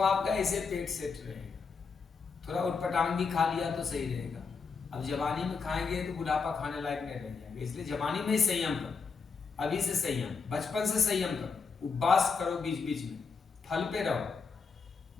ऐसे पेट सेट रहेगा। थोड़ा उटपटांग भी खा लिया तो सही रहेगा। अब जवानी में खाएंगे तो बुढ़ापा खाने लायक नहीं रह जाएंगे, इसलिए जवानी में ही संयम करो, अभी से संयम, बचपन से संयम करो, उपवास करो, बीच बीच में फल पे रहो,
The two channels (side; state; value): right; quieter; 5.2 dB